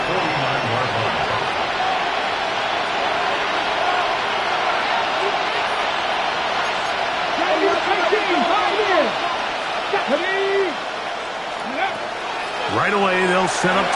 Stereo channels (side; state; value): both; identical; correlation 1.00